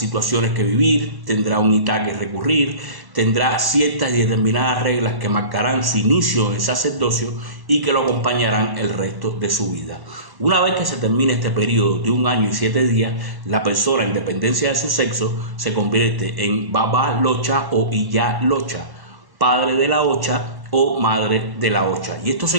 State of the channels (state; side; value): late; left; 1.1 ms